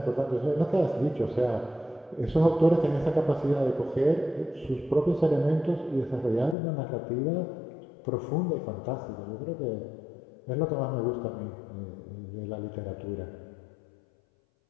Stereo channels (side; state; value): right; drops out; at 6.6 s